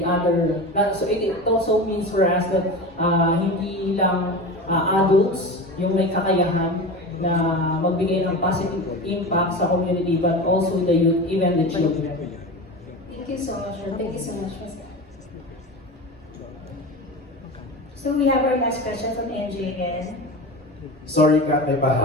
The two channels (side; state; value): both; normal; correlation 0.28